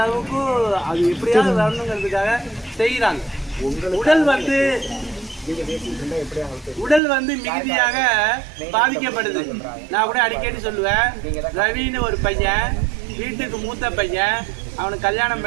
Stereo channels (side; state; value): left; drops out; at 7.0 s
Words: அது எப்படியாவது வரணுங்கிறதுக்காக செய்கிறாங்க. உடல் வந்து மிகுதியாக பாதிக்கப்படுது. நான் கூட அடிக்கடி சொல்லுவேன், ரவின்னு ஒரு பையன், வீட்டுக்கு மூத்த பையன், அவனுக்கு கல்யாணம்